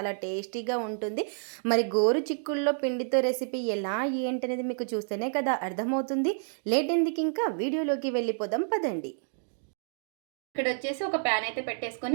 టేస్టీగా ఉంటుంది. మరి గోరు చిక్కుడులో పిండితో రెసిపీ ఎలా ఏంటనేది మీకు చూస్తేనే కదా అర్థమవుతుంది. లేట్ ఎందుకు, ఇంకా వీడియోలోకి వెళ్ళిపోదాం పదండి. ఇక్కడ వచ్చేసి ఒక ప్యాన్ అయితే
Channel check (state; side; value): silent; left; digital silence